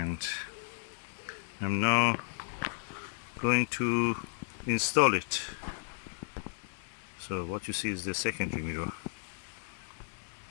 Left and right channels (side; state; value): right; silent; digital silence